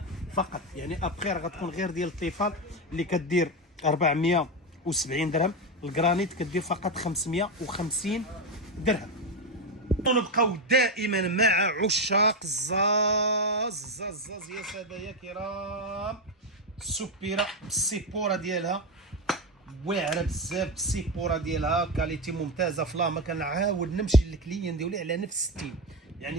فقط. يعني ابخي راه غتكون غير ديال الطيفال اللي كدير 470 درهم، الجرانيت كدير فقط 550 درهم. ونبقاو دائما مع عشاق الزاز يا ساده يا كرام. السوبيره بالسيبوره ديالها واعره بزاف، بالسيبوره ديالها كاليتي ممتازه. فلاما كنعاود نمشي للكليان ديالي على نفس الستيل،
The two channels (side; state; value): both; normal; correlation 0.11